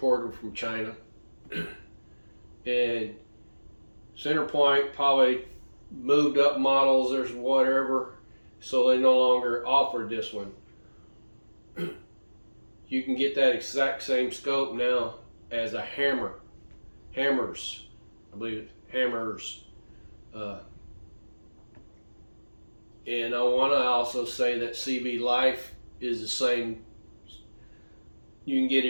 from China, and center point probably moved up models or whatever, so they no longer offered this one. You can get that exact same scope now as a Hammers, I believe it's Hammers. And I want to also say that CV Life is the same. You can get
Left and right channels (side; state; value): both; inverted; correlation -1.00